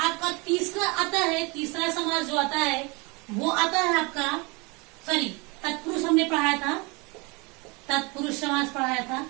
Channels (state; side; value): quieter; left; 27.8 dB